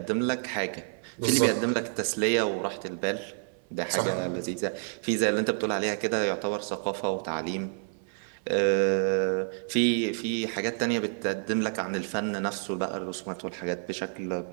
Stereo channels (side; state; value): left; silent; 56 dB below the other